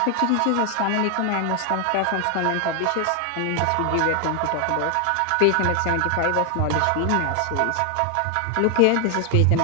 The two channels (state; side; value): different; both; correlation 0.00